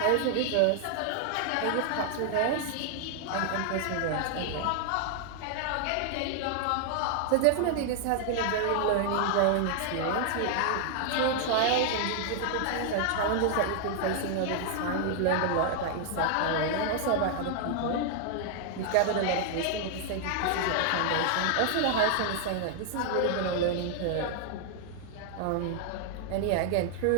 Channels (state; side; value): different; both; correlation 0.00